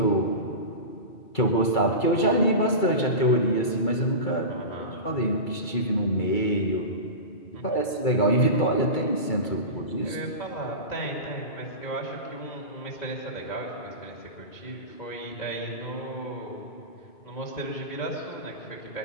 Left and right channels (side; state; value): right; late; 2.3 ms